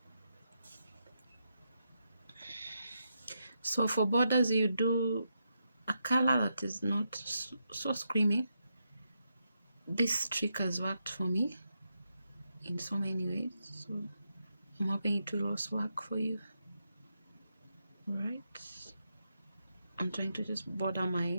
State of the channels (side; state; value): both; inverted; correlation -0.84